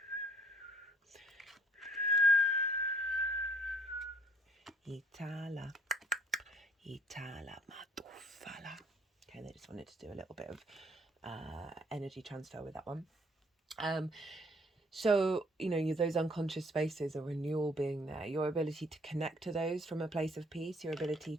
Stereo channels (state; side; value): normal; both; correlation 0.61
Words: matufala. Okay, they just wanted to do a little bit of energy transfer with that one. So, those unconscious spaces, a renewal being there, your ability to connect to those from a place of peace, your ability